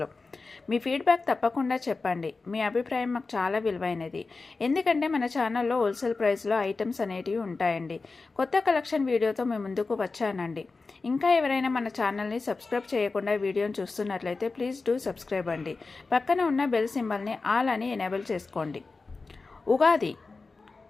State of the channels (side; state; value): right; quieter; 4.0 dB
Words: మీ ఫీడ్బ్యాక్ తప్పకుండా చెప్పండి. మీ అభిప్రాయం మాకు చాలా విలువైనది. ఎందుకంటే మన ఛానల్లో హోల్సేల్ ప్రైస్లో ఐటమ్స్ అనేటివి ఉంటాయండి. కొత్త కలెక్షన్ వీడియోతో మేము ముందుకు వచ్చానండి. ఇంకా ఎవరైనా మన ఛానల్ని సబ్స్క్రైబ్ చేయకుండా వీడియోని చూస్తున్నట్లయితే ప్లీజ్ డూ సబ్స్క్రైబ్ అండి. పక్కన ఉన్న బెల్ సింబల్ని ఆల్ అని ఎనేబుల్ చేసుకోండి. ఉగాది